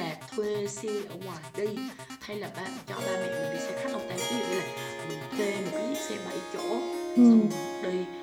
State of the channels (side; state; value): both; identical; correlation 1.00